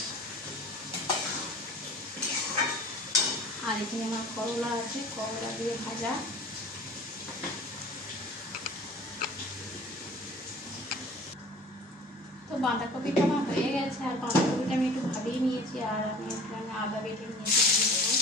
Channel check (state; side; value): normal; both; correlation 0.43